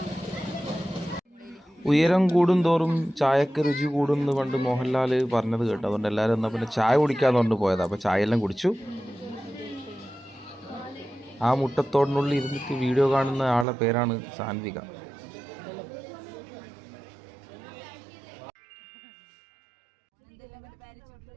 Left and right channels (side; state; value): left; drops out; at 13.7 s